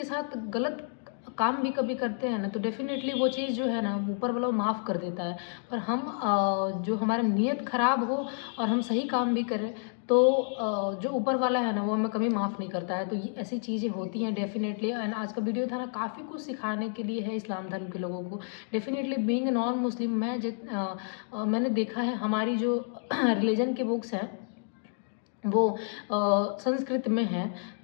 ساتھ غلط کام بھی کبھی کرتے ہیں نا, تو ڈیفینیٹلی وہ چیز جو ہے نا اوپر والا معاف کر دیتا ہے. پر ہم جو ہمارا نیت خراب ہو اور ہم صحیح کام بھی کریں تو جو اوپر والا ہے نا وہ ہمیں کبھی معاف نہیں کرتا ہے. تو یہ ایسی چیزیں ہوتی ہیں ڈیفینیٹلی. اینڈ آج کا ویڈیو تھا نا کافی کچھ سکھانے کے لیے ہے اسلام دھرم کے لوگوں کو. ڈیفینیٹلی بینگ نان مسلم, میں نے دیکھا ہے ہماری جو ریلیجن کے بکس ہیں وہ سنسکرت میں ہیں.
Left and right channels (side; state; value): right; silent; 58 dB below the other